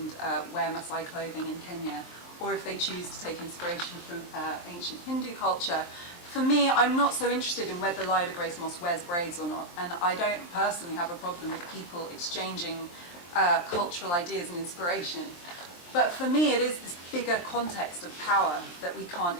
wear Maasai clothing in Kenya, or if they choose to take inspiration from ancient Hindu culture. For me, I'm not so interested in whether Lila Grace Moss wears braids or not, and I don't personally have a problem with people exchanging cultural ideas and inspiration. But for me, it is this bigger context of power that we can't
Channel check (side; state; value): right; late; 23 ms